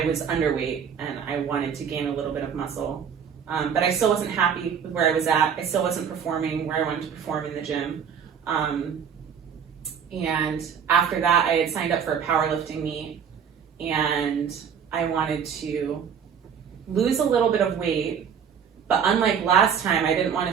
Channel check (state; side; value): quieter; left; 7.4 dB